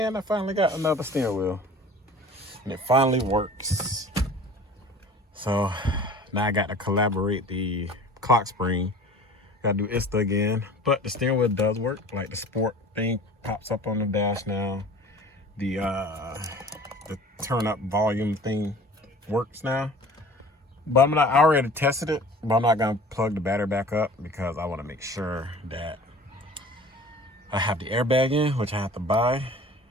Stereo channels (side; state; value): both; normal; correlation 0.44